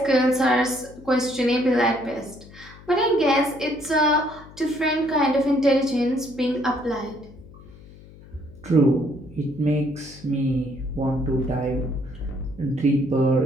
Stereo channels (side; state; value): left; noise; hum, 21 dB below the sound